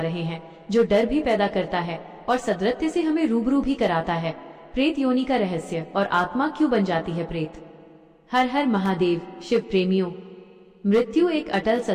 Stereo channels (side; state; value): both; identical; correlation 1.00